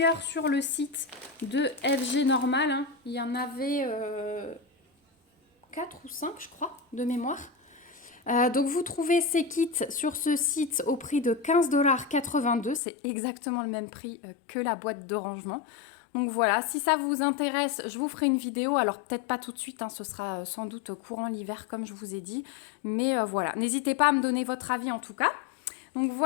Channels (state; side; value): drops out; right; at 12.8 s